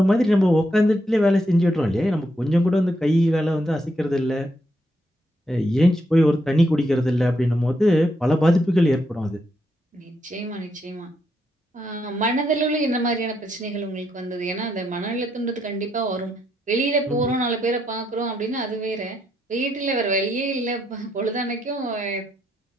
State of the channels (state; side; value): normal; both; correlation 0.78